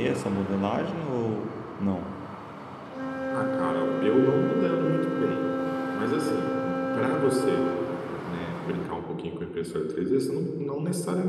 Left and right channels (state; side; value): identical; both; correlation 1.00